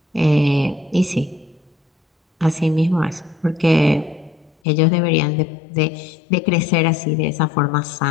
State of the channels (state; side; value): drops out; right; at 4.5 s